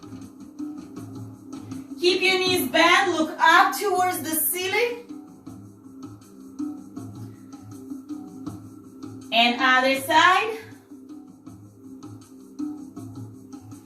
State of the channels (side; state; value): both; identical; correlation 1.00